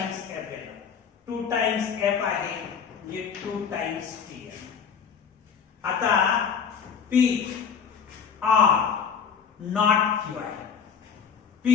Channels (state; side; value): quieter; right; 6.8 dB